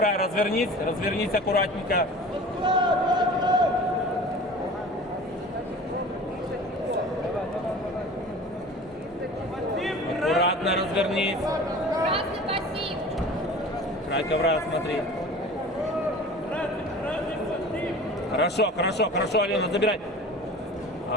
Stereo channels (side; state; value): both; normal; correlation 0.40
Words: развернись аккуратненько. Аккуратно развернись. Красный пассив. Край ковра смотри. Хорошо, Алина, забирай.